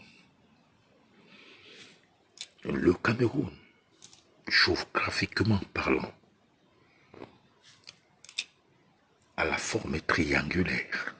Le Cameroun, géographiquement parlant, a la forme triangulaire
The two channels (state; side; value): identical; both; correlation 1.00